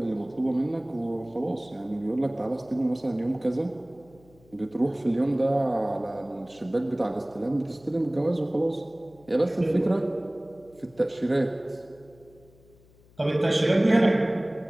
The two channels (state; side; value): noise; left; hum, 28 dB below the sound